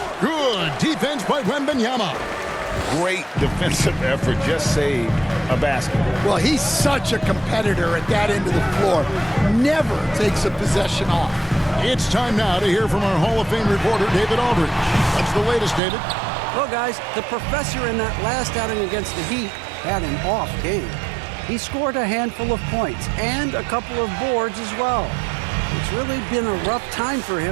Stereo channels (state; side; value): drops out; left; at 15.8 s